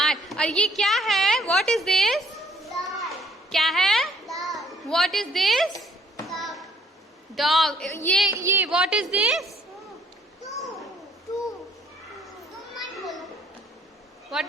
और ये क्या है? What is this? क्या है? What is this? डॉग। ये what is this?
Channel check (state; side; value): normal; both; correlation 0.63